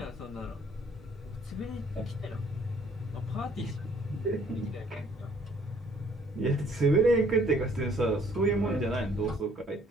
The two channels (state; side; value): normal; both; correlation 0.61